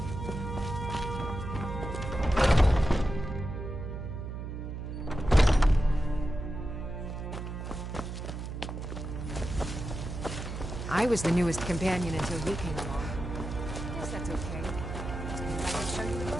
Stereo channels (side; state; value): right; noise; hum, 6 dB below the sound